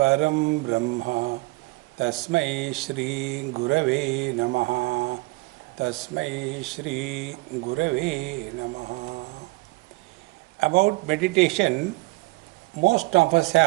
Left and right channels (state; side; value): quieter; left; 25.1 dB